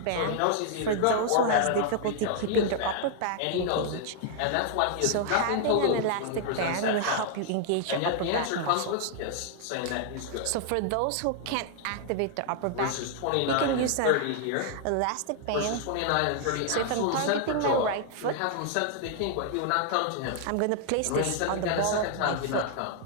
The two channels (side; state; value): both; different; correlation 0.00